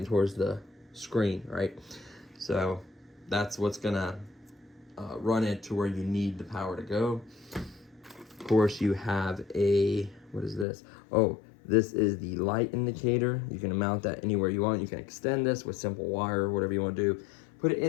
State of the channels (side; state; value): right; drops out; at 10.7 s